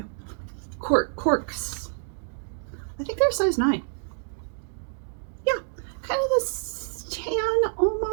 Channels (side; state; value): left; silent; digital silence